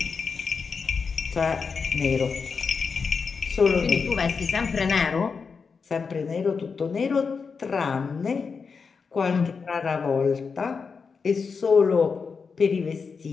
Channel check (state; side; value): quieter; right; 5.3 dB